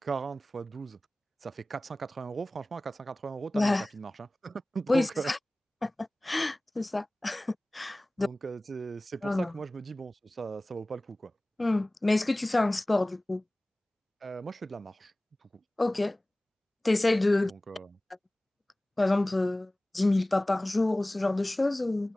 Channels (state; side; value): normal; both; correlation 0.98